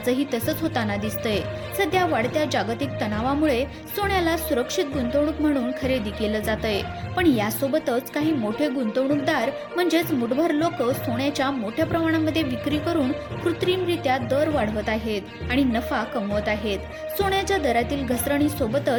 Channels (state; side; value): identical; both; correlation 1.00